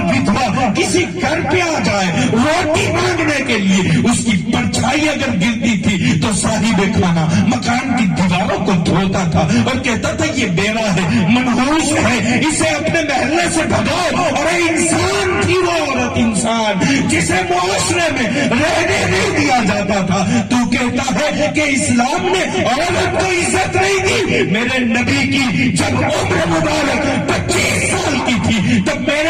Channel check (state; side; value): identical; both; correlation 1.00